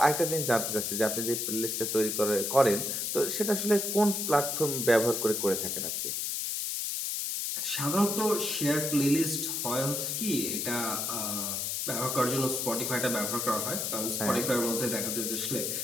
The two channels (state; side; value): noise; left; hiss, 1 dB below the sound